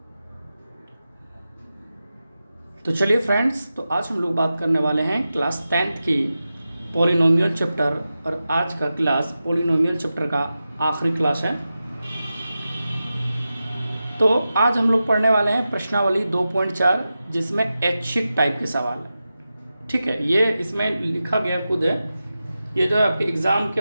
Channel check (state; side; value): inverted; both; correlation -0.92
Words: तो चलिए फ्रेंड्स, तो आज हम लोग बात करने वाले हैं क्लास 10th की पॉलिनोमियल चैप्टर, और आज का क्लास पॉलिनोमियल चैप्टर का आखिरी क्लास है। तो आज हम लोग पढ़ने वाले हैं प्रश्नावली 2.4, जिसमें ऐच्छिक टाइप के सवाल है। ठीक है, ये इसमें लिखा गया खुद है, ये जो है आपके एग्ज़ाम के